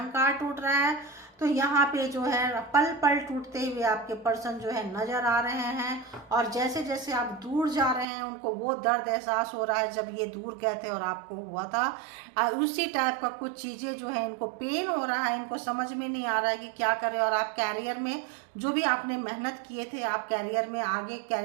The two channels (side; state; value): left; drops out; at 8.1 s